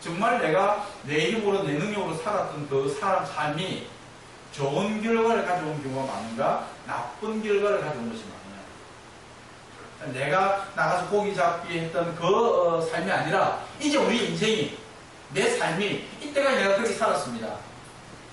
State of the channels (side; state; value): both; identical; correlation 1.00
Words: 정말 내가 내 힘으로 내 능력으로 살았던 그 사람 삶이 좋은 결과를 가져온 경우가 많은가 나쁜 결과를 가져온 것이 많으냐. 내가 나가서 고기 잡기 했던 그 삶이 아니라 이제 우리 인생이 내 삶이 이때까지 내가 그렇게 살았습니다.